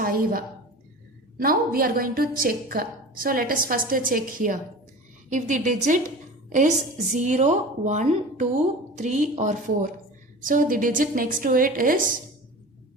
Now we are going to check. So let us first check here. If the digit is 0, 1, 2, 3 or 4. So the digit next to it is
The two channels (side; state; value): both; normal; correlation 0.35